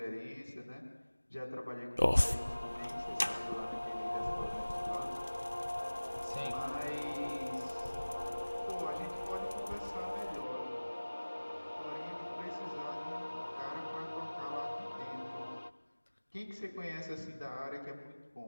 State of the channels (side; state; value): both; inverted; correlation -1.00